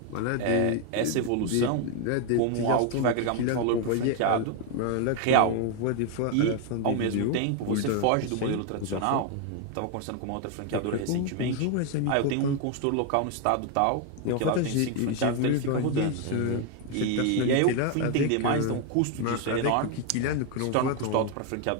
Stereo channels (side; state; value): both; different; correlation 0.01